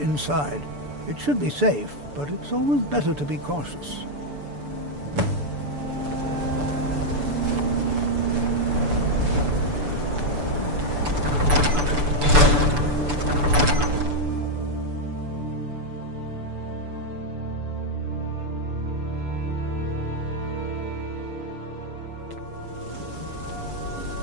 It should be safe, but it's always better to be cautious.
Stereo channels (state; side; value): late; left; 6.9 ms